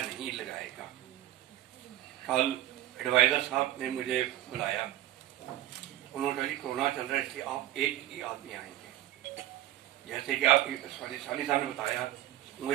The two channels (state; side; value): quieter; left; 13.9 dB